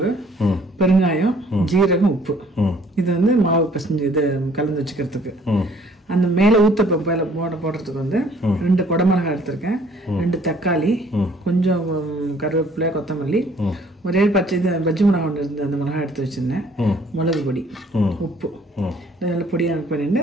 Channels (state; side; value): normal; both; correlation 0.59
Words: பெருங்காயம், ஜீரகம், உப்பு. இது வந்து மாவு பிசைஞ்சு இது கலந்து வச்சுக்கிறதுக்கு. அந்த மேலே ஊத்தப்பம் போடுறதுக்கு வந்து 2 குடமிளகாய் எடுத்திருக்கேன், 2 தக்காளி, கொஞ்சம் கருவேப்பிலை, கொத்தமல்லி, ஒரே பச்சை பஜ்ஜி மிளகாய் ஒன்று இருந்து அந்த மிளகாய் எடுத்து வச்சிருந்தேன், மிளகு பொடி, உப்பு, இதெல்லாம் பொடியாக பண்ணிட்டு